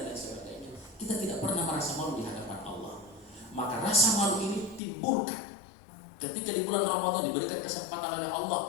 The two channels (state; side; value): drops out; right; at 4.8 s